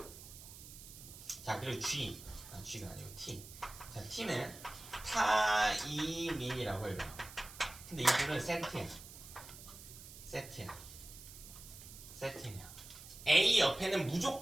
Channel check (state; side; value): noise; right; hiss, 15 dB below the sound